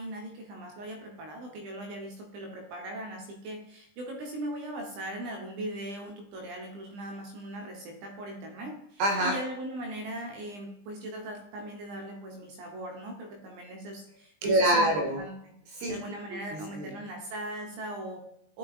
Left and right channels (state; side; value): late; left; 20 ms